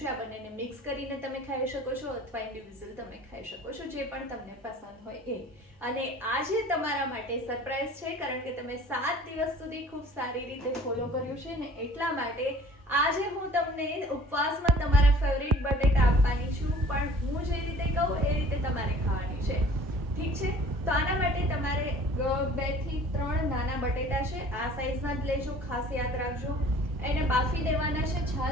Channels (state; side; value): normal; both; correlation 0.49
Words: આ બંનેને મિક્સ કરીને તમે ખાઈ શકો છો અથવા ઇન્ડિવિજ્યુઅલ તમે ખાઈ શકો છો, જે પણ તમને પસંદ હોય એ। અને આજે તમારા માટે સરપ્રાઈઝ છે, કારણ કે તમે 7 દિવસ સુધી ખૂબ સારી રીતે ફોલો કર્યું છે ને, એટલા માટે આજે હું તમને ઉપવાસમાં તમારા ફેવરિટ બટેટા આપવાની છું, પણ હું જે રીતે કહું એ રીતે તમારે ખાવાની છે, ઠીક છે? તો આના માટે તમારે 2 થી 3 નાના બટેટા છે, આ સાઈઝના જ લેજો, ખાસ યાદ રાખજો। એને બાફી દેવાના છે,